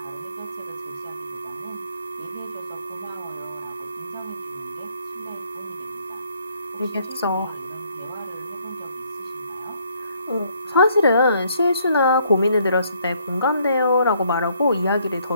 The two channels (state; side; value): inverted; both; correlation -0.67